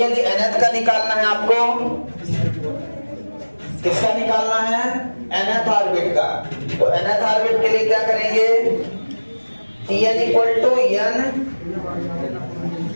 nth का निकालना है आपको, किसका निकालना है? nth ऑर्बिट का। तो nth ऑर्बिट के लिए क्या करेंगे? Tn equal to n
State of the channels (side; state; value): both; inverted; correlation -1.00